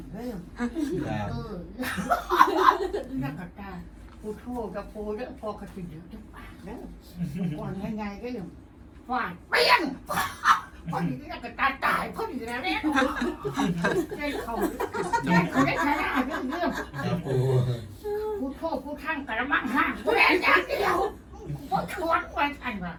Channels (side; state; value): both; identical; correlation 1.00